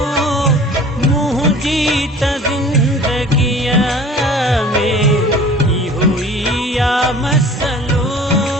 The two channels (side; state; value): both; normal; correlation 0.45